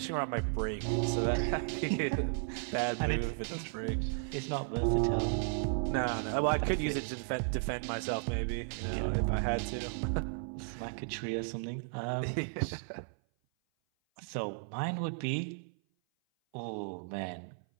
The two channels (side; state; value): left; silent; 55 dB below the other